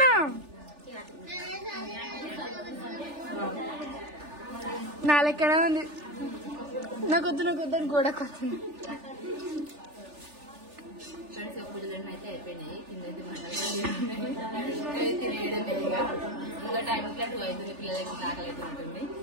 నా లెక్కనే ఉంది. నాకొద్దు అని గోడ కొత్తుంది. ఫ్రెండ్స్ పూజలన్నీ అయితే అయిపోయినాయి. కింద తినేయడం లేదుగా. ఇంకా టైం ఇట్లా 2 అవుతుంది. పిల్లలకి ఆకలి అయితే ఉంటుంది.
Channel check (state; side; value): late; left; 3.4 ms